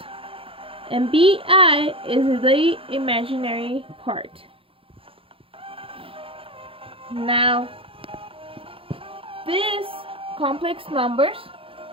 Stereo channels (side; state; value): left; late; 0.27 ms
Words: and bi is the imaginary part. Now, these complex numbers